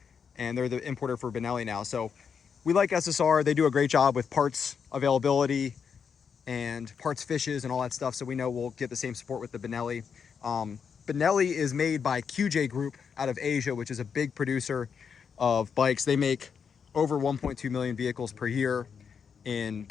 and they're the importer for Benelli now. So we like SSR. They do a great job with parts availability and parts fishes and all that stuff, so we know we'll get the same support with the Benelli. Benelli is made by QJ Group out of Asia, which is a big producer of bikes. They make over 1.2 million vehicles per year in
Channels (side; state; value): right; quieter; 6.6 dB